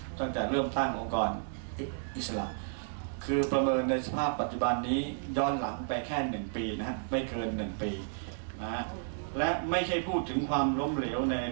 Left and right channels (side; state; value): left; silent; digital silence